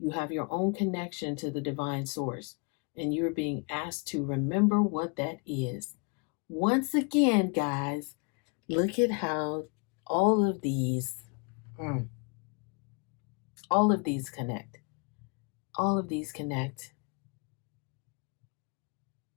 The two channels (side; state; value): right; quieter; 33.9 dB